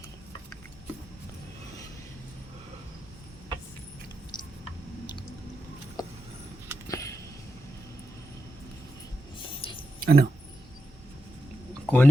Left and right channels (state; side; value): normal; both; correlation 0.87